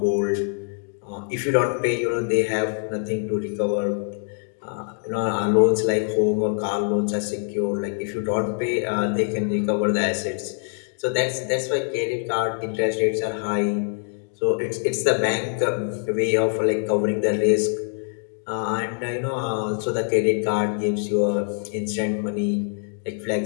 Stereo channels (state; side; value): silent; right; 63 dB below the other